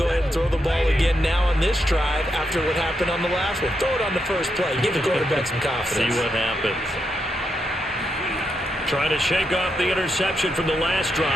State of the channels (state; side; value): normal; both; correlation 0.83